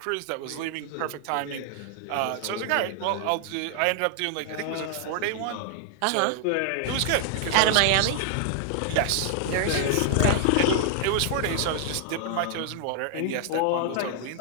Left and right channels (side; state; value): both; different; correlation 0.00